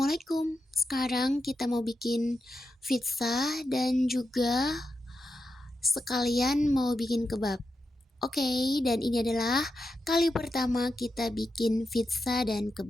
Sekarang kita mau bikin pizza dan juga sekalian mau bikin kebab. Oke, dan ini adalah kali pertama kita bikin pizza dan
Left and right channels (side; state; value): both; normal; correlation 0.87